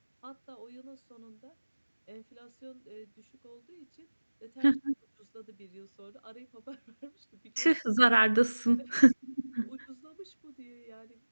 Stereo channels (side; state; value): both; inverted; correlation -1.00